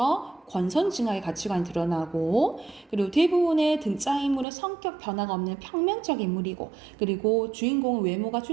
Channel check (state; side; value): drops out; left; at 4.5 s